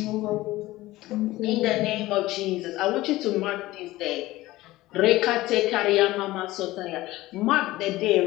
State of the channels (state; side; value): quieter; right; 17.7 dB